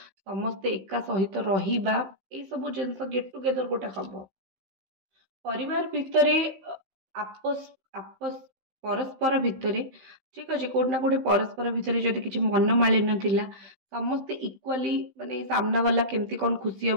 समस्ते एका सहित रहिबा, ये सब जिनस गेट टुगेदर गोटे हम। परिवार भितर आपस आपस परस्पर भितर ठीक अच्छे, कोटना कोटे परस्पर भितर जदि किसी मनमालिन्य थिला, समस्ते इक्वाली माने सामना वाला केमती कौन खुशी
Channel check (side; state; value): left; late; 15 ms